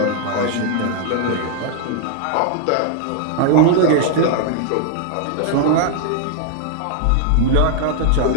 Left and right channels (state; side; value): different; both; correlation 0.00